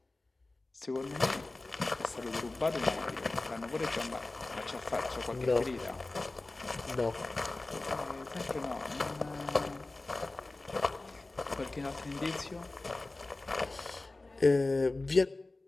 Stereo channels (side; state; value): right; quieter; 3.1 dB